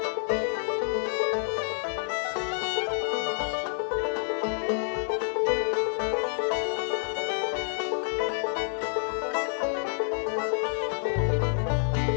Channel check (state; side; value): silent; right; 59 dB below the other